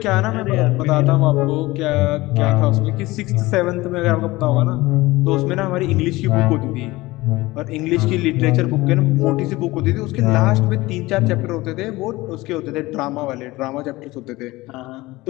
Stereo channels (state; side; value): quieter; right; 19.9 dB